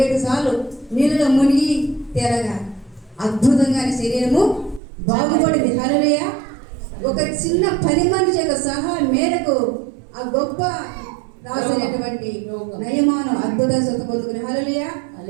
సార్లు నీళ్ళలో మునిగి తేరగా అద్భుతంగా శరీరము బాగుపడింది. హల్లెలూయా. ఒక చిన్న పని మనిషి యొక్క సహాయం మేరకు ఆ గొప్ప రాసినటువంటి నయమాను అద్భుత స్వత పొందుకుని. హల్లెలూయా.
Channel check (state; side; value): drops out; left; at 4.8 s